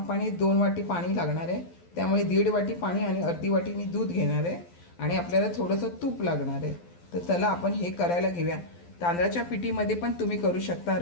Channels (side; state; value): right; late; 12 ms